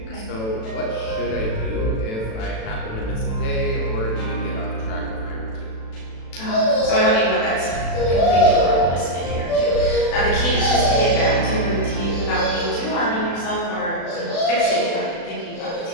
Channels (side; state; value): right; late; 36 ms